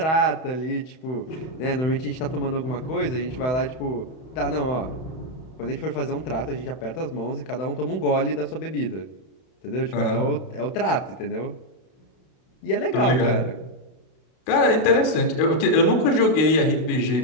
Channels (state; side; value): late; right; 31 ms